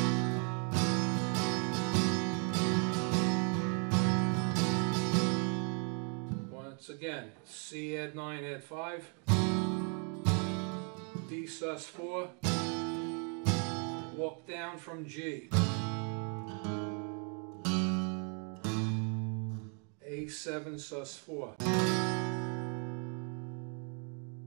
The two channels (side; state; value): left; quieter; 39.1 dB